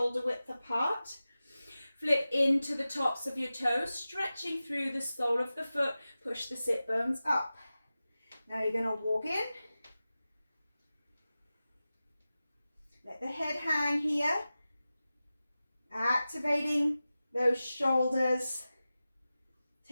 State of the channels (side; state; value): both; inverted; correlation -0.95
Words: width apart. Flip into the tops of your toes, stretching through the sole of the foot, push the sit bones up. Now you're going to walk in. Let the head hang here. Activating those shoulders,